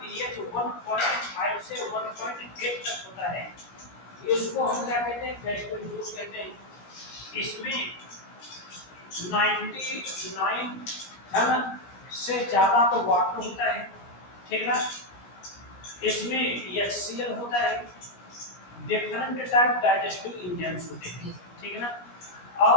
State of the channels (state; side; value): late; right; 17 ms